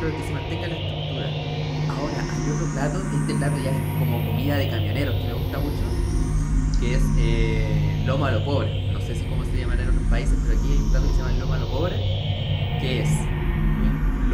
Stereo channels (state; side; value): identical; both; correlation 1.00